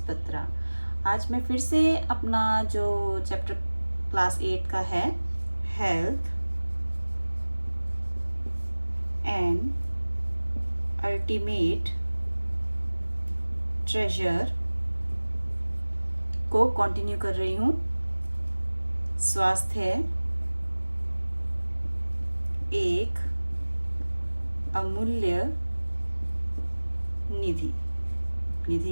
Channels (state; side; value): inverted; both; correlation -1.00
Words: Batra. आज मैं फिर से अपना जो चैप्टर क्लास 8 का है हेल्थ एंड अल्टीमेट ट्रेजर को कंटिन्यू कर रही हूँ। स्वास्थ्य एक अमूल्य निधि।